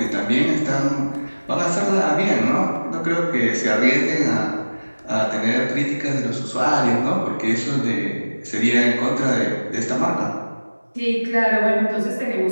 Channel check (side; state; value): both; inverted; correlation -1.00